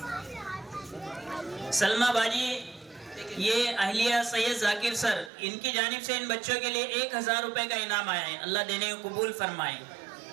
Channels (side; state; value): left; drops out; at 5.3 s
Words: सलमा बाजी ये अहलिया सैयद जाकिर सर इनकी जानिब से इन बच्चों के लिए 1000 रुपए का इनाम आया है। अल्लाह देने को कबूल फरमाए।